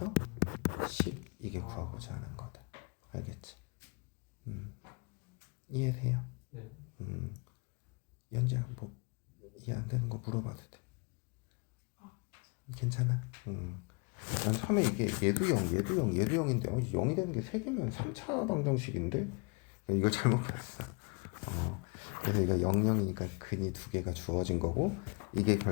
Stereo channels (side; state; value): right; quieter; 32.3 dB